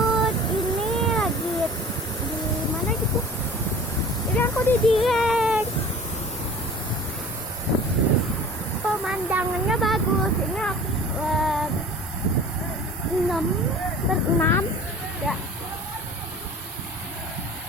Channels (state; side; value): normal; both; correlation 0.43